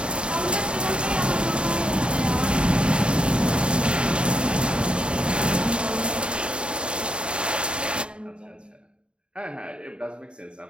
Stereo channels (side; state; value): left; late; 0.053 ms